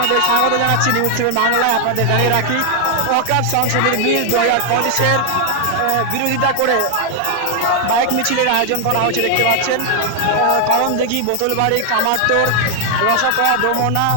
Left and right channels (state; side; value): different; both; correlation 0.00